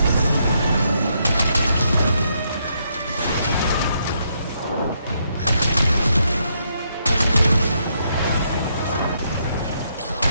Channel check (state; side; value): inverted; both; correlation -0.76